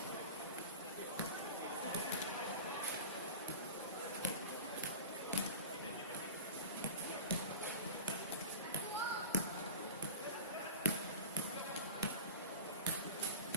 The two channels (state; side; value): inverted; both; correlation -0.32